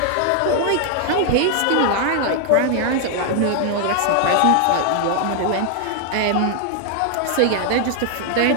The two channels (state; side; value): different; both; correlation 0.00